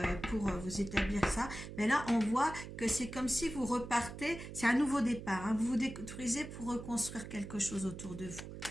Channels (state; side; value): noise; right; hum, 10 dB below the sound